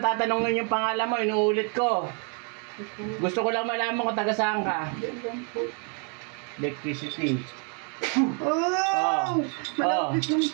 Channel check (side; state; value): left; quieter; 39.2 dB